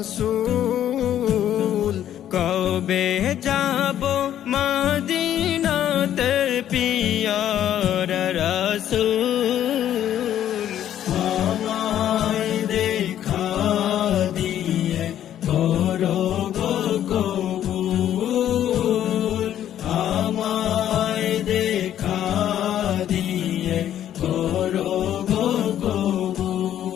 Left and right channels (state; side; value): quieter; right; 11.1 dB